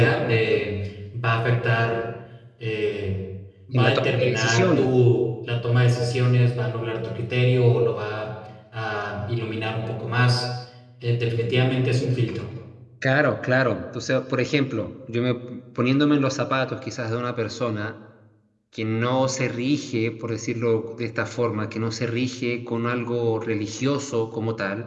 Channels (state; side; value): identical; both; correlation 1.00